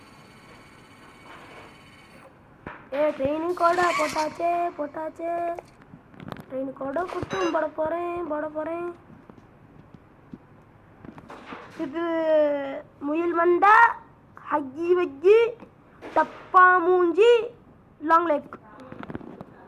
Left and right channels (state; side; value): identical; both; correlation 1.00